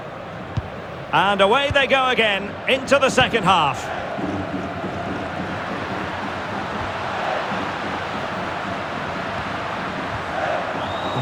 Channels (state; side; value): identical; both; correlation 1.00